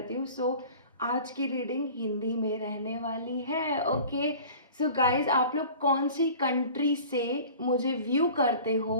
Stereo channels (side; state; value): both; inverted; correlation -0.43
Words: हूँ। सो आज की रीडिंग हिंदी में रहने वाली है। ओके, सो गाइस आप लोग कौन सी कंट्री से मुझे व्यू करते